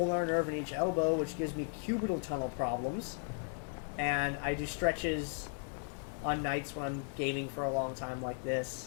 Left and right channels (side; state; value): right; silent; 54 dB below the other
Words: nerve in each elbow, which gives me cubital tunnel problems, and I do stretches on nights when I'm gaming for a long time like